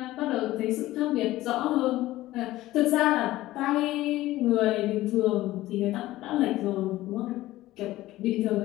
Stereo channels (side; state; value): right; quieter; 16.4 dB